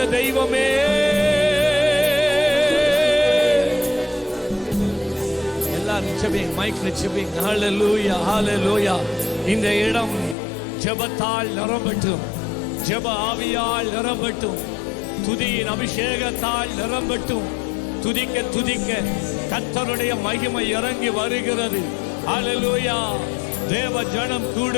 தெய்வமே, எல்லாரும் ஜெபிங்க, மைக்ல ஜெபிங்க. ஹல்லேலூயா ஹல்லேலூயா. இந்த இடம் ஜெபத்தால் நிரம்பட்டும், ஜெப ஆவியால் நிரம்பட்டும், துதியின் அபிஷேகத்தால் நிரம்பட்டும். துதிக்க துதிக்க கர்த்தருடைய மகிமை இறங்கி வருகிறது. ஹல்லேலூயா. தேவ ஜனம்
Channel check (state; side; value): drops out; right; at 10.4 s